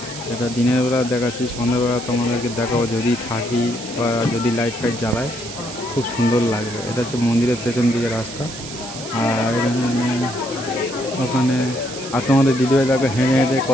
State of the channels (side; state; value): right; noise; hiss, 12 dB below the sound